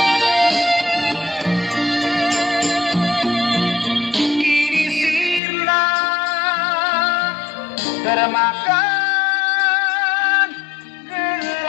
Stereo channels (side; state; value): right; drops out; at 5.4 s